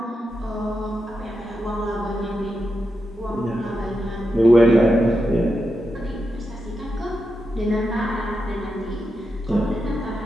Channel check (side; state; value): both; normal; correlation 0.87